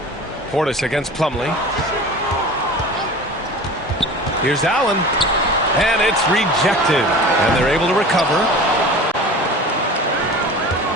Portis against Plumlee. Here's Allen. And it's rejected. And they're able to recover.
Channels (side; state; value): both; normal; correlation 0.37